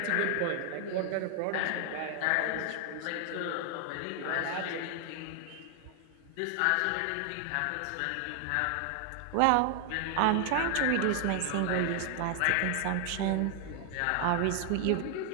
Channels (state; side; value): different; both; correlation 0.00